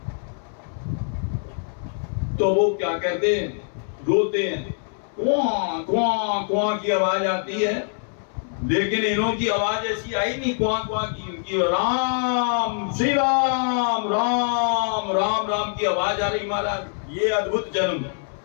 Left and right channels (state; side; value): silent; right; 63 dB below the other